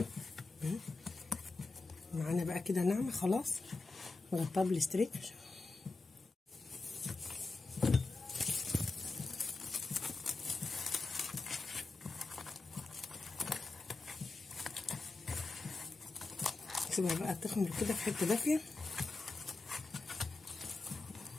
معانا بقى كده ناعمه خلاص. نغطيها بالاستريتش. نسيبها بقى تخمر كده في حته دافيه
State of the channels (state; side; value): quieter; right; 3.6 dB